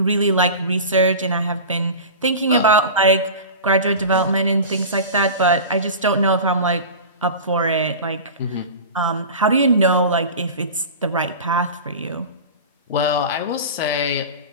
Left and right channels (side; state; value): both; inverted; correlation -0.32